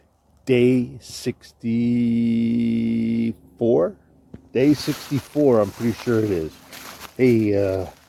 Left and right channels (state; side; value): identical; both; correlation 1.00